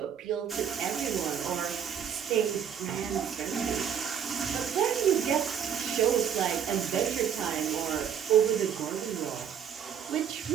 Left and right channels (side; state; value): left; quieter; 8.3 dB